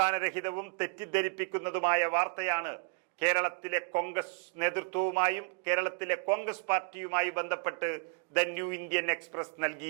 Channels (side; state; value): left; quieter; 35.7 dB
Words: തെറ്റിദ്ധരിപ്പിക്കുന്നതുമായ വാർത്തയാണ് കേരളത്തിലെ കോൺഗ്രസ് നേതൃത്വവുമായും കേരളത്തിലെ കോൺഗ്രസ് പാർട്ടിയുമായി ബന്ധപ്പെട്ട് ദ ന്യൂ ഇന്ത്യൻ എക്സ്പ്രസ്